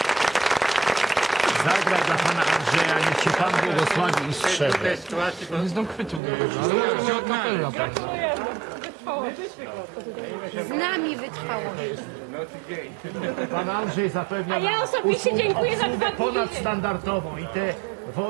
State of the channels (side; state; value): left; drops out; at 6.2 s